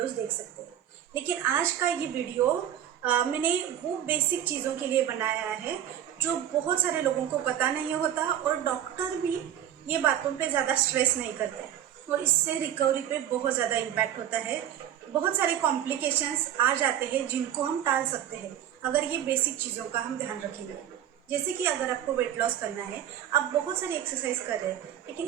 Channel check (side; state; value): left; quieter; 10.6 dB